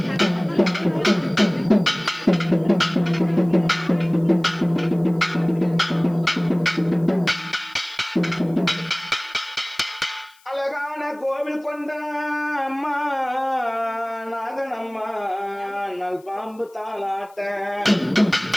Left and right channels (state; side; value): noise; left; hiss, 30 dB below the sound